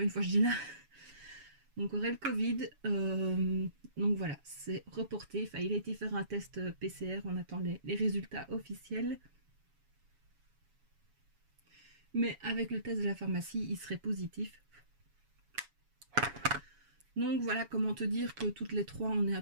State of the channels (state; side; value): late; left; 7.2 ms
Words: une fois je dis là. Donc aurait le Covid. Donc voilà, c'est reporté. Enfin, il a été faire un test PCR, on attend les résultats officiels. Mais avec le test de la pharmacie, il serait positif. Donc voilà, comment te dire que toutes les trois, on est un